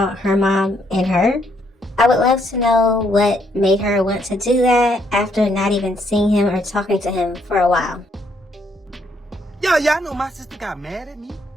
her mom, and her. I would love to know what made her want to do that after not even seeing him or talking to him for a while. Yo, y'all know my sister got mad at me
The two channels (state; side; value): normal; both; correlation 0.72